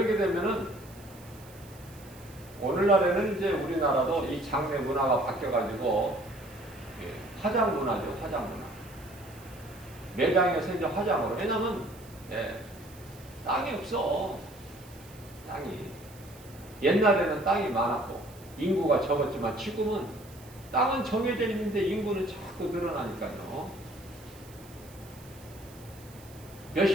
되면은 오늘날에는 이제 우리나라도 이 장례 문화가 바뀌어가지고 화장 문화죠. 화장 문화. 매장에서 이제 화장으로. 왜냐면 땅이 없어. 땅이. 옛날에는 땅이 많았고 인구가 적었지만 지금은 땅은 정해져 있는데 인구는 자꾸 늘어나니까요.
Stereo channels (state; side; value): noise; right; hiss, 22 dB below the sound